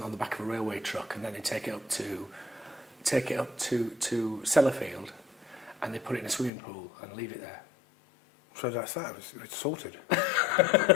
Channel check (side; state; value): right; drops out; at 6.5 s